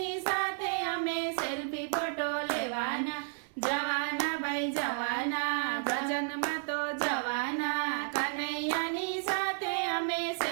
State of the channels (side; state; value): left; silent; digital silence